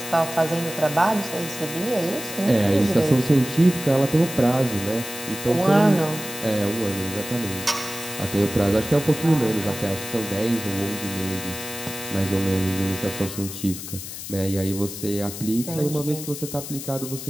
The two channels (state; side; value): noise; left; hiss, 9 dB below the sound